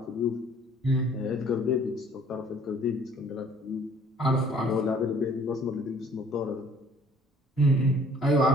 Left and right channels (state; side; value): normal; both; correlation 0.56